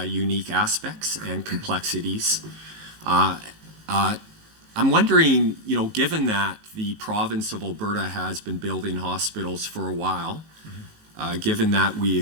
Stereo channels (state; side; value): late; left; 18 ms